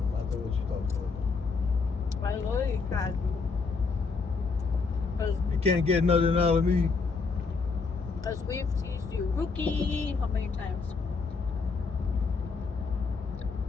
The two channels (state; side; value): quieter; right; 4.6 dB